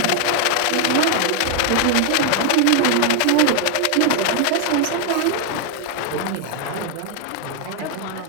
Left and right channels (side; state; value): both; different; correlation 0.00